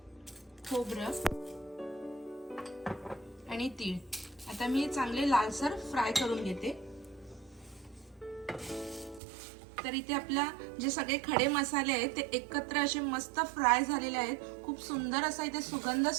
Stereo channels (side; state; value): left; drops out; at 9.2 s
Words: खोबरं आणि तीळ आता मी चांगले लालसर फ्राय करून घेते। तर इथे आपला जे सगळे खडे मसाले आहेत ते एकत्र असे मस्त फ्राय झालेले आहेत, खूप सुंदर असा इथे सुगंध